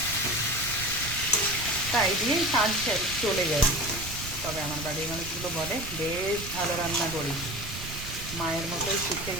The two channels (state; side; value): noise; right; rumble, 10 dB below the sound